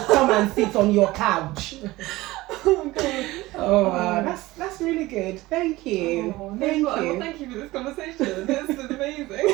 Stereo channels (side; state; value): left; quieter; 19.0 dB